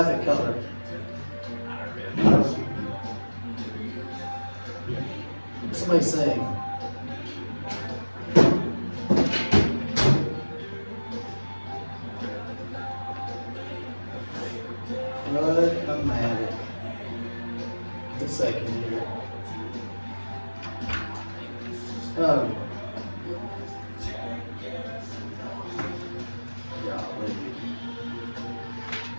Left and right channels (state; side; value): inverted; both; correlation -1.00